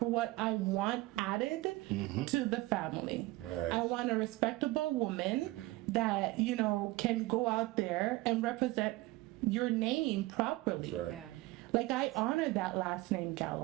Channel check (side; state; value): left; quieter; 19.9 dB